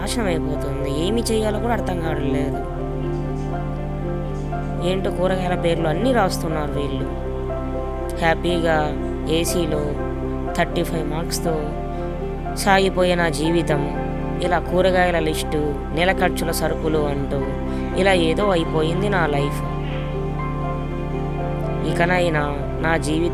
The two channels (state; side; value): identical; both; correlation 1.00